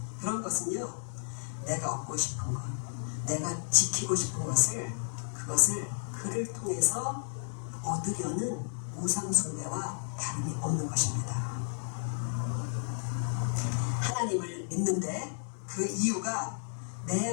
그런 것은요, 내가 얻고 싶은 것, 내가 지키고 싶은 것을, 그것을 그를 통해서 얻으려는 우상 숭배와 다름이 없는 것입니다. 하나님을 믿는데 그 이유가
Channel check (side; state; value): right; silent; digital silence